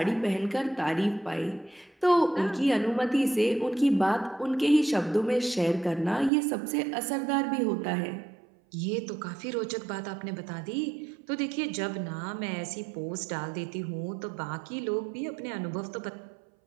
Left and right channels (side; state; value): left; drops out; at 6.3 s